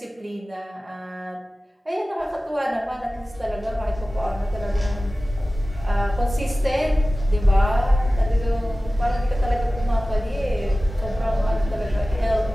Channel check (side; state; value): both; normal; correlation 0.96